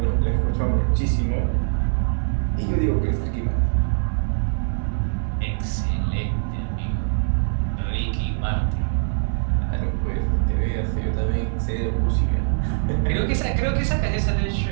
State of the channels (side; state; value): left; silent; 60 dB below the other